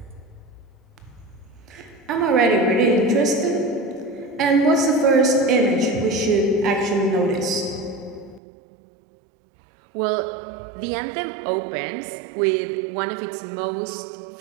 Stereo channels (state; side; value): drops out; left; at 8.4 s